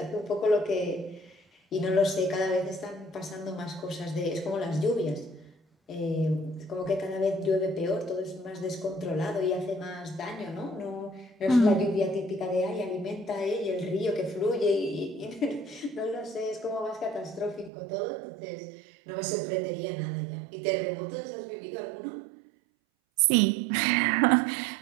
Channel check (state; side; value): drops out; left; at 17.7 s